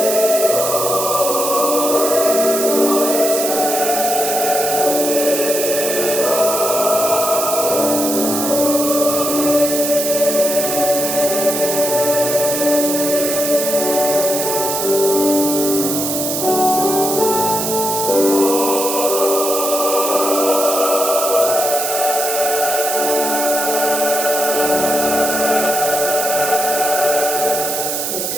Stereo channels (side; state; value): right; noise; hiss, 2 dB below the sound